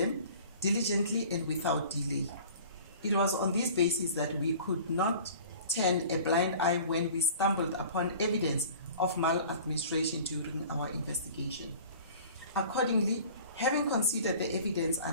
diligently and without delay. It was on this basis that we could not turn a blind eye when we stumbled upon evidence of maladministration during our investigation. Accordingly, having considered the evidence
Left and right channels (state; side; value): inverted; both; correlation -0.45